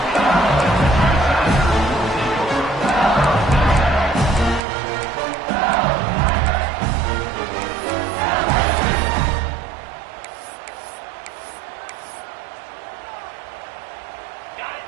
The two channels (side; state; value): left; drops out; at 4.6 s